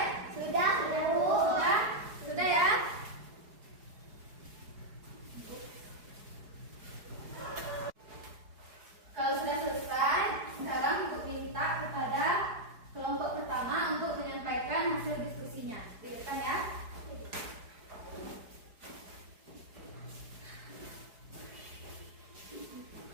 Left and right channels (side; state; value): left; late; 4.8 ms